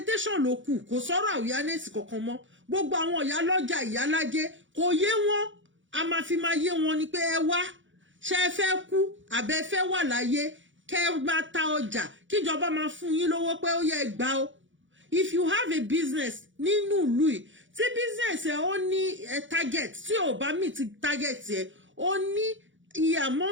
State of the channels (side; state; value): left; late; 0.56 ms